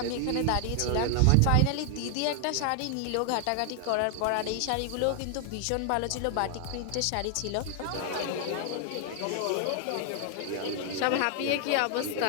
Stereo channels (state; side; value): different; both; correlation 0.00